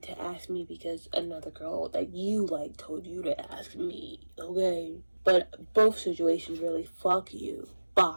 ask me because another girl that you like told you to ask me, okay? But both situations really fuck you.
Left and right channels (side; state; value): both; inverted; correlation -1.00